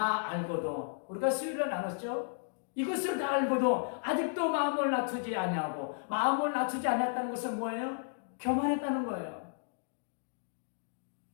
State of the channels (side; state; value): right; silent; digital silence